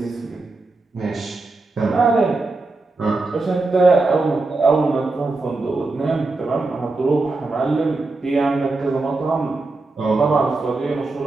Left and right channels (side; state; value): left; quieter; 3.4 dB